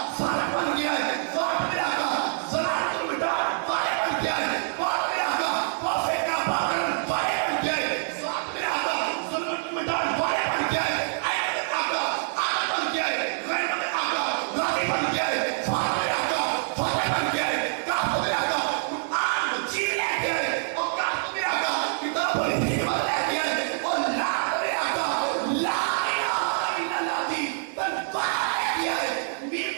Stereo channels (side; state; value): left; silent; 61 dB below the other